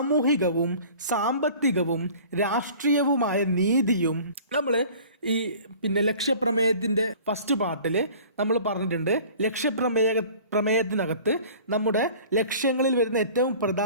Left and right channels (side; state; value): both; inverted; correlation -0.46